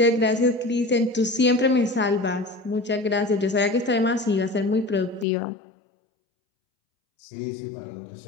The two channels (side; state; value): right; drops out; at 5.2 s